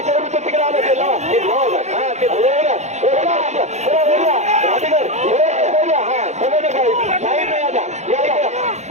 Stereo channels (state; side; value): late; left; 0.33 ms